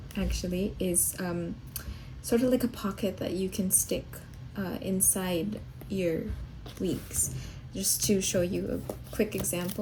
actually is sort of like a pocket that you can stick inside your weeks. Just to show you a quick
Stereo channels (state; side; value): identical; both; correlation 1.00